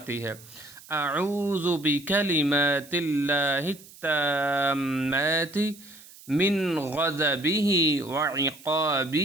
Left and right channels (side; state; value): right; noise; hiss, 21 dB below the sound